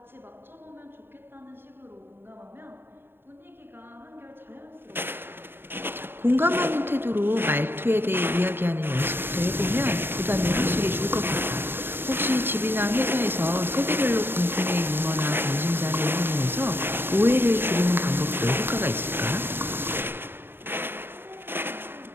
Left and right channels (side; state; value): left; late; 0.10 ms